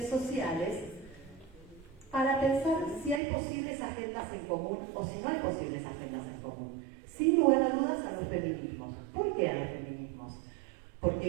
sociales para pensar si hay posibles agendas en común o si no hay posibles agendas en común. Sin lugar a dudas a los feminismos. ¿Por qué a los feminismos?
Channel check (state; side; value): drops out; left; at 3.2 s